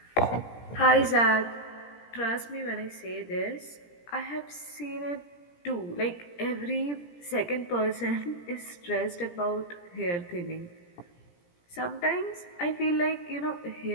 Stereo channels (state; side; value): late; right; 17 ms